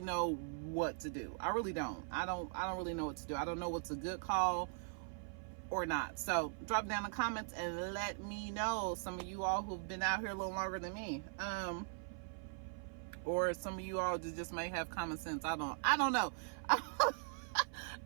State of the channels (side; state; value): left; silent; 51 dB below the other